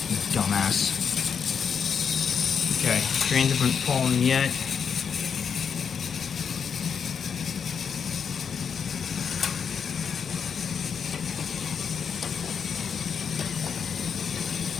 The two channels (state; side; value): quieter; right; 6.8 dB